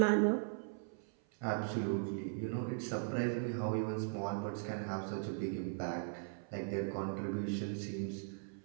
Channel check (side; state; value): left; silent; 52 dB below the other